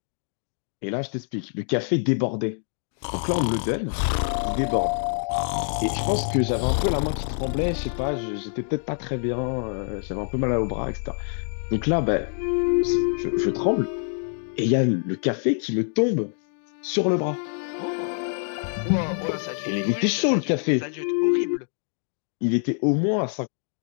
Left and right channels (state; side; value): silent; right; digital silence